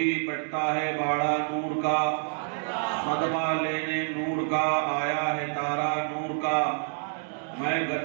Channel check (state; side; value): silent; left; digital silence